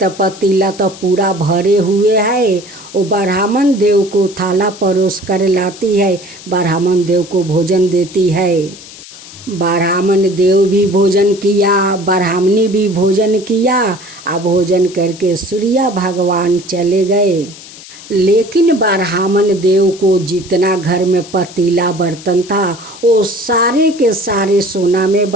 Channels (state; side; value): noise; left; hiss, 17 dB below the sound